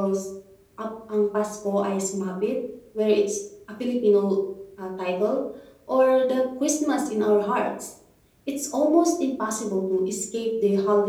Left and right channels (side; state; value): both; identical; correlation 1.00